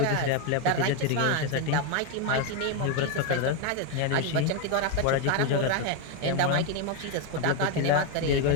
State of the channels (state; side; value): different; both; correlation 0.02